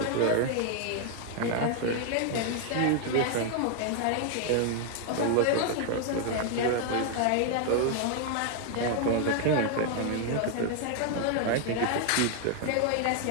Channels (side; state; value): both; different; correlation 0.00